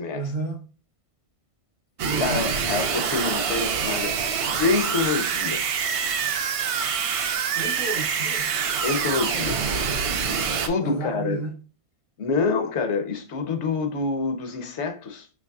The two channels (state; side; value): late; left; 1.5 ms